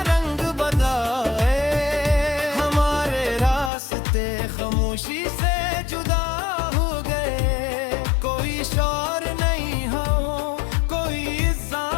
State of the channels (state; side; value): drops out; right; at 3.7 s